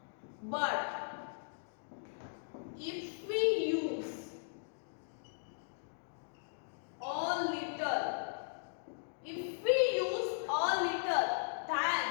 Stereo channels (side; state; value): right; silent; digital silence